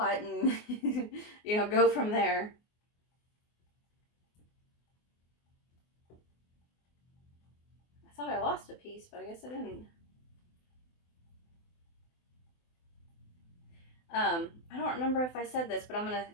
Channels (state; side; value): late; right; 24 ms